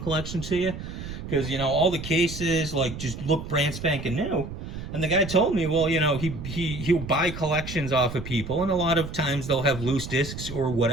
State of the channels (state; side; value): noise; right; rumble, 9 dB below the sound